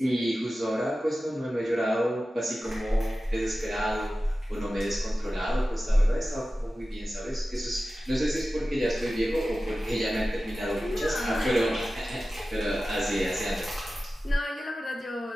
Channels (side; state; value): both; normal; correlation 0.95